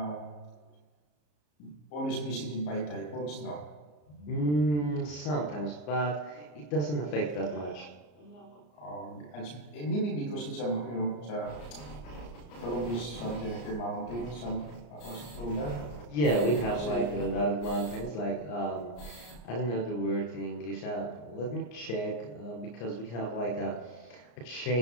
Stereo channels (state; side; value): late; right; 34 ms